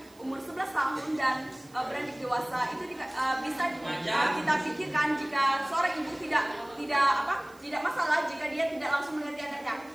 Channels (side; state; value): right; noise; hiss, 27 dB below the sound